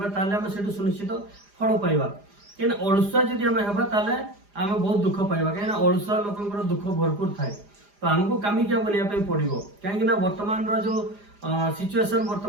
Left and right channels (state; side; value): late; left; 4.9 ms